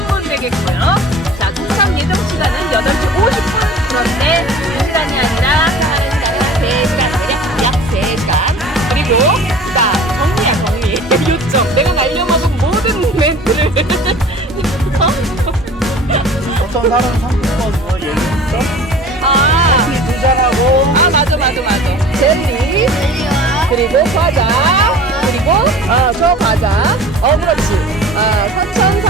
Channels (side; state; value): both; normal; correlation 0.43